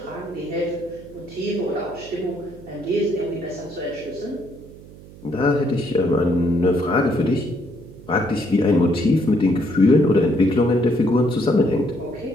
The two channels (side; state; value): right; noise; hum, 19 dB below the sound